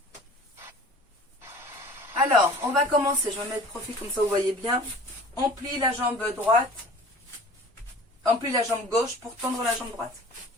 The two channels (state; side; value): normal; both; correlation 0.44